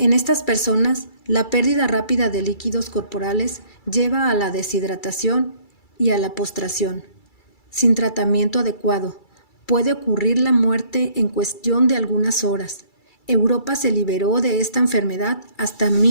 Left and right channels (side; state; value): right; late; 2.3 ms